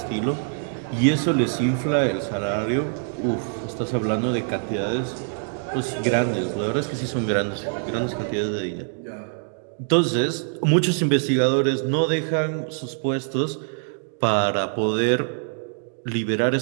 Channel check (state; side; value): silent; left; digital silence